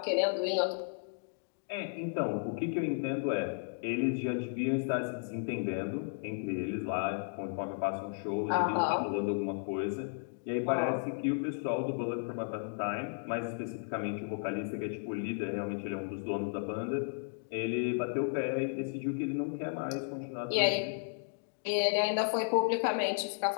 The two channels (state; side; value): silent; right; digital silence